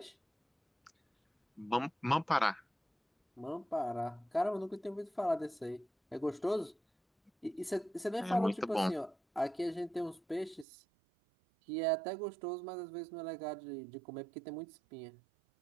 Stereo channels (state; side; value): drops out; left; at 10.7 s